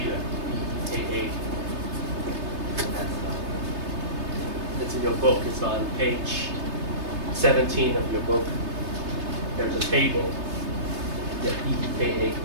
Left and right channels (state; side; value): late; left; 3.3 ms